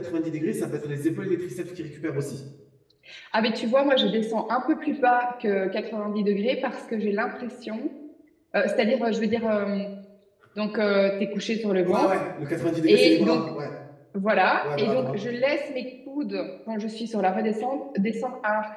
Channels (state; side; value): identical; both; correlation 1.00